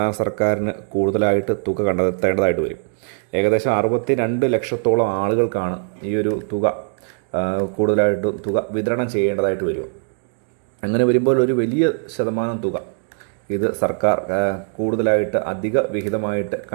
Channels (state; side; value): silent; left; digital silence